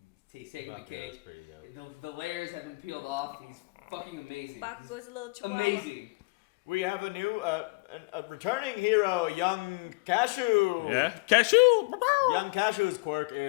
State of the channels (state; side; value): quieter; right; 27.7 dB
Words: he's taking the cake. Pretty dope. The layers have been peeled off. He's fucking amazing. Bakugo's a little chihuahua. Amazing. We have a new, a returning hero, Young Cashew. Yeah? Cashew! Young Cashew's quirk